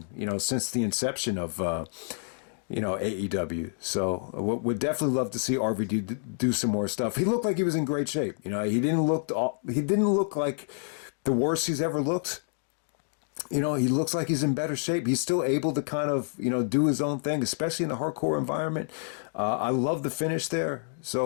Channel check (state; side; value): silent; right; digital silence